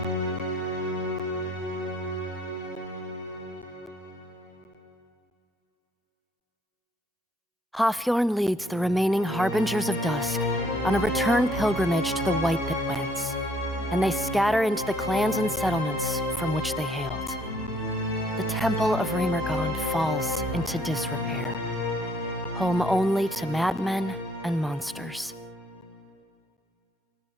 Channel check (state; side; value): normal; both; correlation 0.65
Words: Hafjorn leads the remaining Harbingers of Dusk on a return pilgrimage to the White Pit Winds, and they scatter into the clans and settlements from which they hailed. The Temple of Remergond falls into disrepair, home only to madmen and monsters.